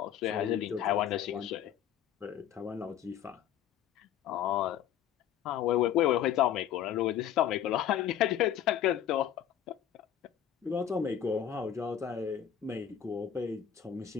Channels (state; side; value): quieter; right; 9.9 dB